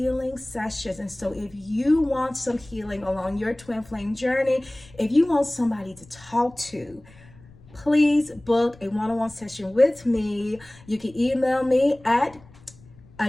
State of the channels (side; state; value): left; noise; rumble, 24 dB below the sound